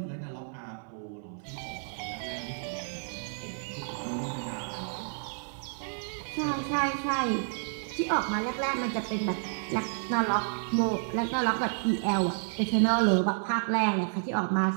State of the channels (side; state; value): left; silent; 57 dB below the other